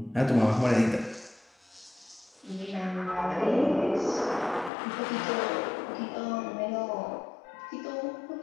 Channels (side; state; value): right; drops out; at 4.7 s